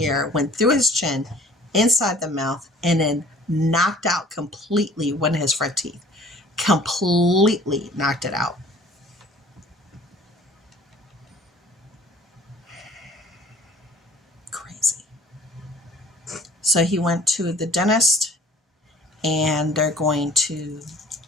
went through his chin, inside the mouth, and then knocked out completely one of his front teeth. Completely knocked it out. Crazy. So he went to the dentist and they're going to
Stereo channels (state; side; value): normal; both; correlation 0.51